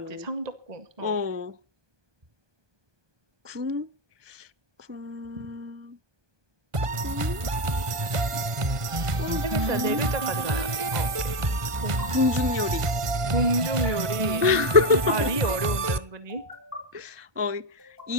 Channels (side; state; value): left; late; 1.4 ms